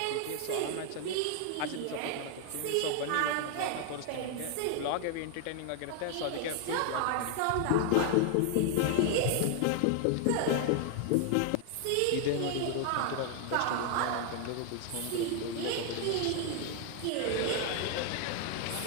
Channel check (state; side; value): different; both; correlation 0.00